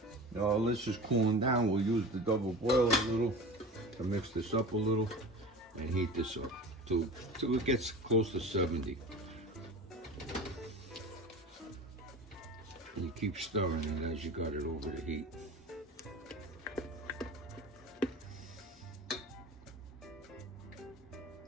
is cooling down, we'll use the double boiler a little to mix this up a little and heat this up till it gets close to 70. And you keep stirring it as you got it over the heat.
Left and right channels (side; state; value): both; normal; correlation 0.34